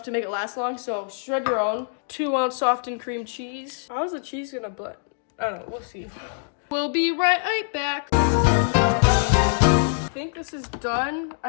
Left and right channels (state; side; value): silent; right; digital silence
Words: to make it last long. So shred your own. 2 ounce softened cream cheese. How's the cheese gonna butt? I don't know. We'll see. We'll be right back. I think this is done.